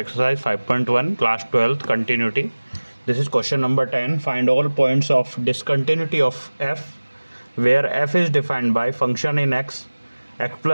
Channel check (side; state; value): both; inverted; correlation -1.00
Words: exercise 5.1 class 12th continuity. This is question number 10. Find all points of discontinuity of f where f is defined by function in x